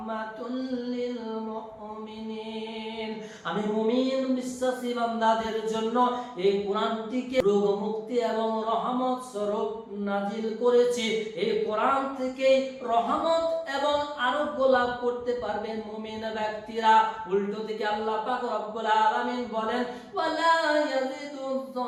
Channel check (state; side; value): identical; both; correlation 1.00